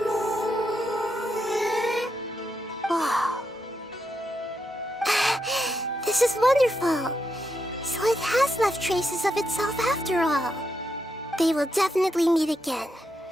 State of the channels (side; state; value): both; normal; correlation 0.83